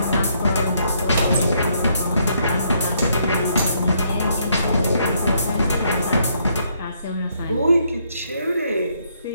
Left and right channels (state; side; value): inverted; both; correlation -0.72